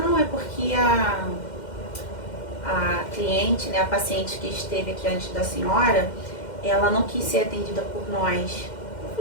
é porque a cliente, né, a paciente que esteve aqui antes da senhora, ela não quis ser atendida por nós. Eu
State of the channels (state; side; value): late; right; 2.1 ms